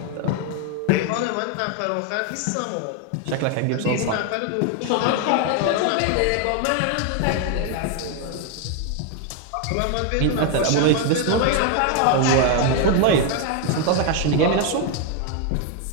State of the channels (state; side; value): different; both; correlation 0.01